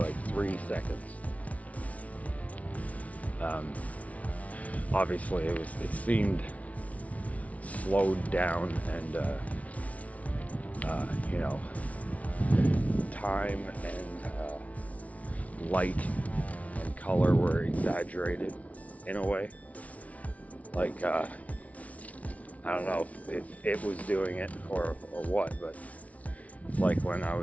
3 seconds. Obviously it seemed slowed down, and you know, time and light and color were exaggerated in a way. Like I don't know if it was doing it or what, but it's like when I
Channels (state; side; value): late; right; 0.067 ms